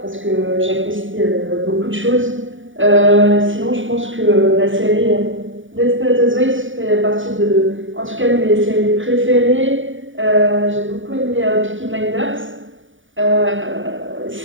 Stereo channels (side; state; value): left; late; 0.57 ms